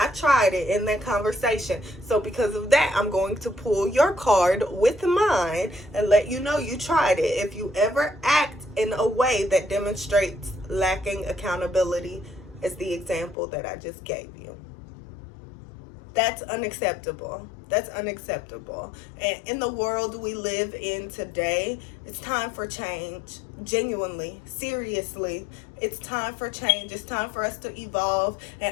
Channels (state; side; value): drops out; right; at 13.4 s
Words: tried it in that conversation. So because of that, I'm going to pull your card with mine and let you know you tried it. If you ever act in a way that demonstrates lacking accountability, as the example that I just gave you. That's unacceptable. That's unacceptable. And in the world we live in today, it's time for change. Genuinely, seriously, it's time for change. It's time for us to evolve.